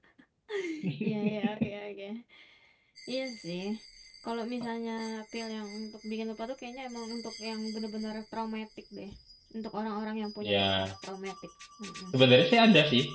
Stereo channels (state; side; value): identical; both; correlation 1.00